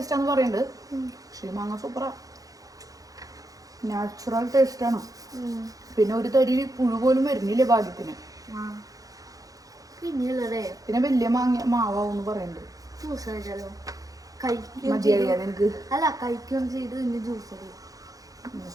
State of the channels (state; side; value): late; left; 0.17 ms